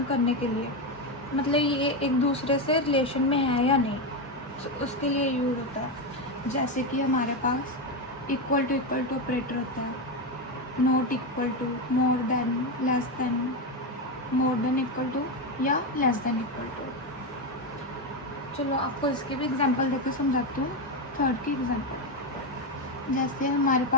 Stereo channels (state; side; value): normal; both; correlation 0.10